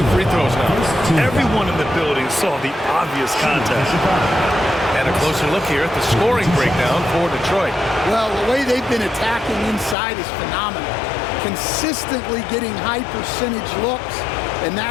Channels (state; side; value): drops out; right; at 10.0 s